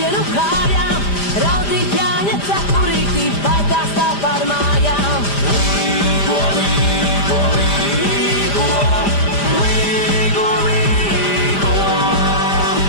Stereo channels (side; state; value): right; late; 5.0 ms